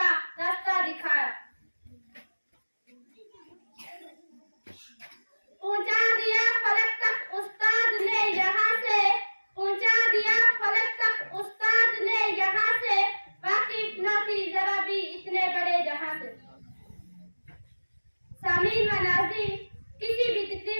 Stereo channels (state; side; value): inverted; both; correlation -1.00